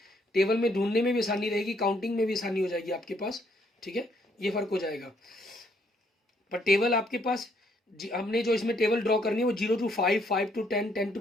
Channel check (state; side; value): normal; both; correlation 0.69